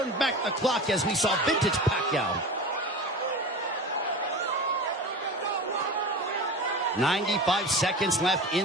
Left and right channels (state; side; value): normal; both; correlation 0.31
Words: back the clock as we saw vintage Pacquiao. 95 seconds left